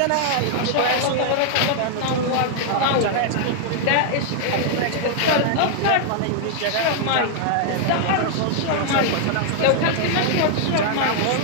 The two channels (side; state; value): both; different; correlation 0.00